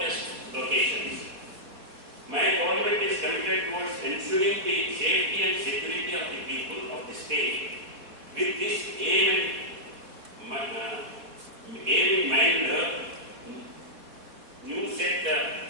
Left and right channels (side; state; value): left; late; 4.0 ms